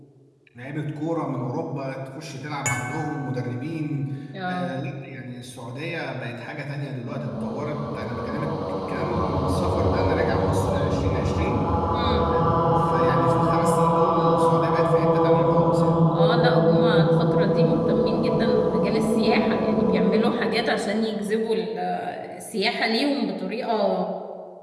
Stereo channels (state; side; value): identical; both; correlation 1.00